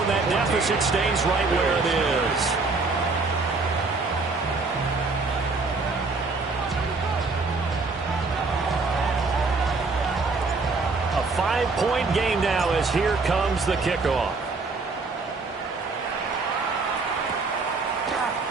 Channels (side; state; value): left; quieter; 3.9 dB